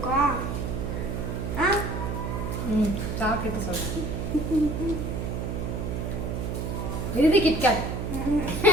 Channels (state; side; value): noise; right; hum, 3 dB below the sound